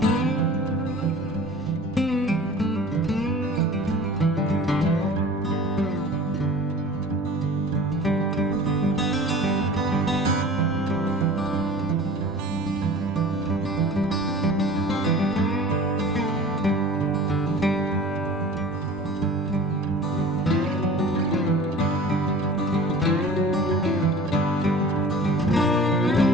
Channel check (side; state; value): both; normal; correlation 0.42